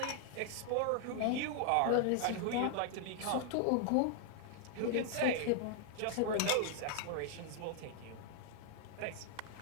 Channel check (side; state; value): both; different; correlation 0.00